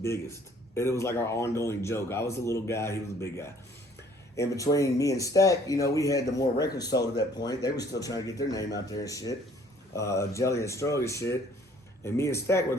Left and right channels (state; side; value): normal; both; correlation 0.58